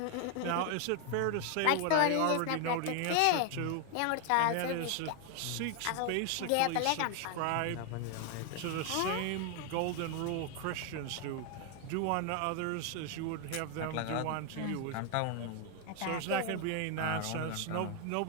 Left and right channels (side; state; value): both; different; correlation 0.01